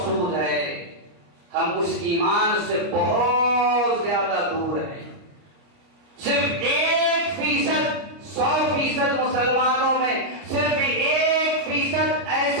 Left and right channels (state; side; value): late; left; 29 ms